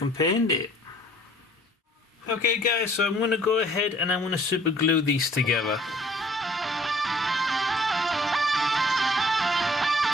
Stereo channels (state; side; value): normal; both; correlation 0.55